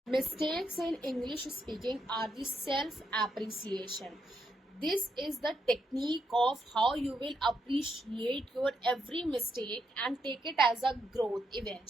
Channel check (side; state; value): both; normal; correlation 0.79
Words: Mistakes in English speaking are the self appreciation. This is the technique of how you will appreciate your every mistake and take it as a growth